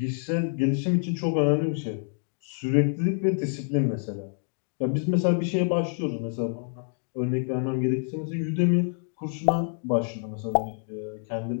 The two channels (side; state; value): right; silent; 60 dB below the other